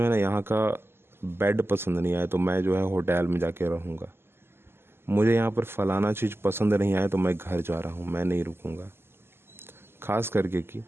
है ना यहाँ का बेड पसंद नहीं आया तो मैं जो है होटल में जाके रहूँगा। मुझे यहाँ पर फलाना चीज़ पसंद नहीं आया तो मैं घर जा रहा हूँ, मैं नहीं रुकूँगा। खास करके कि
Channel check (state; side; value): late; left; 0.12 ms